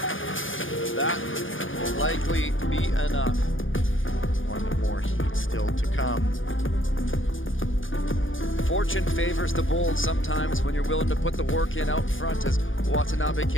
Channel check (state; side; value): late; right; 0.57 ms